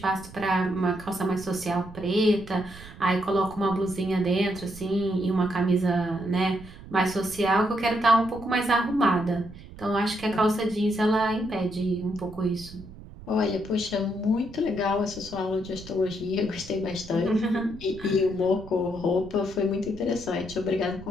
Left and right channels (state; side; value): noise; right; rumble, 17 dB below the sound